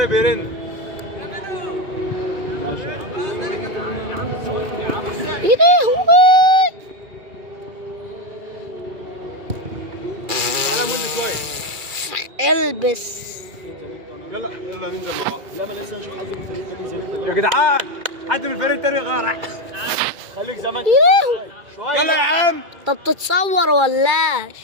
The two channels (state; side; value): late; left; 2.4 ms